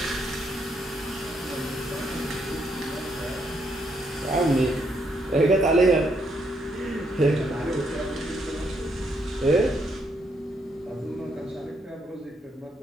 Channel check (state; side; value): normal; both; correlation 0.75